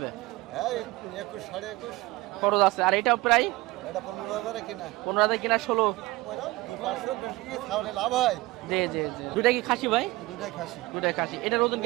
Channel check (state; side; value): quieter; left; 20.6 dB